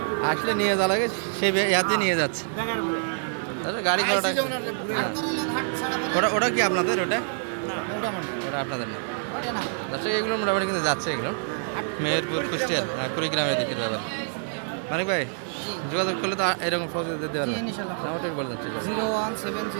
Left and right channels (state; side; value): silent; left; 61 dB below the other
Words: আসলে নিয়ে যাওয়া লাগে, সে ইয়াতে নিয়ে যাচ্ছে। তাহলে গাড়ি ভাড়াটা হ্যাঁ। ওটা কি আপনাদের? ওটা আপনাদের না দর্শক। এগুলো মোটামুটি কিন্তু যাচ্ছে এগুলো মেহেরপুর, কুষ্টিয়ার, কুড়িগ্রামের দিকের ব্যাপার। মানিক ভাই যোগাযোগ করলে তো এরকম সহজে দিতে পারবেন। ওটাই বলে যাচ্ছে